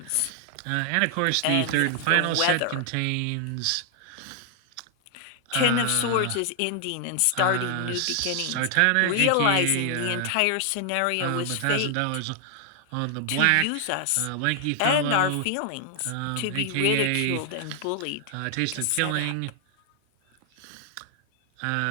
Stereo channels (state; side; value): different; both; correlation 0.00